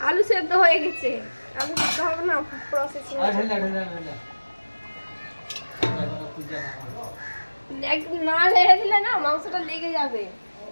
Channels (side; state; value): both; inverted; correlation -1.00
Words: আলু সেদ্ধ হয়ে গেছে, আলু সেদ্ধ হবে না, প্রসেসিং না লেগে দিলে না মাংসটা লেগে যাবে।